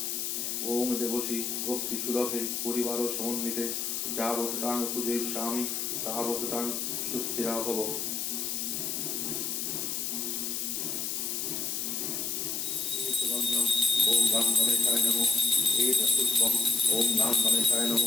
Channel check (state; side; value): noise; left; hiss, 2 dB below the sound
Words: ওম দেবসী ভক্তি সুলভে পরিবার সমন্বিতে যাবৎ তাং পূজয়িষ্যামি তাবৎ তাং সুস্থিরা ভব। ওম গাং গণেশায় নমঃ। এতৎপুষ্পং ওম গাং গণেশায়